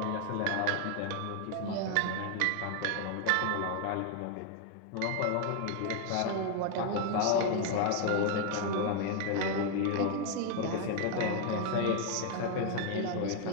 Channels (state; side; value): different; both; correlation 0.00